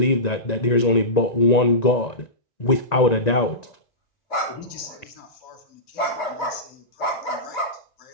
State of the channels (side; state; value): right; late; 1.9 ms